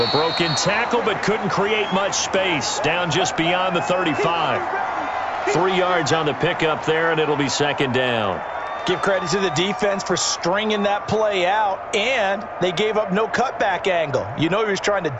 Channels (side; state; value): both; identical; correlation 1.00